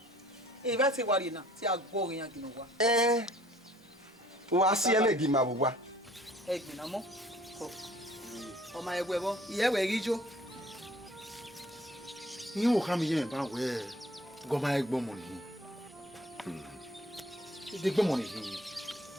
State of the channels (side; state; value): both; normal; correlation 0.56